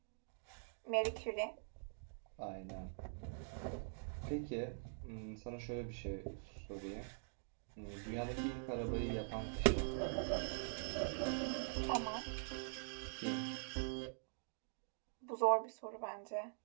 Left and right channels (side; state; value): left; silent; digital silence